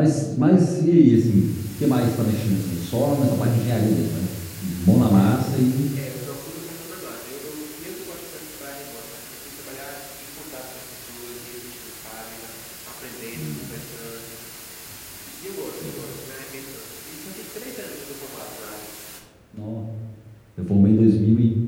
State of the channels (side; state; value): both; identical; correlation 1.00